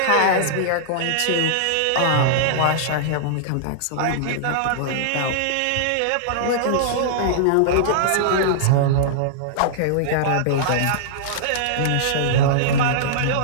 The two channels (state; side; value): different; both; correlation -0.02